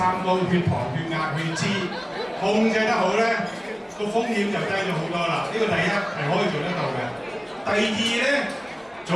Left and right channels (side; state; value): both; identical; correlation 1.00